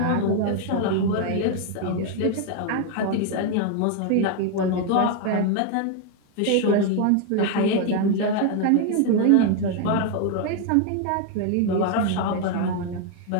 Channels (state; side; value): different; both; correlation 0.01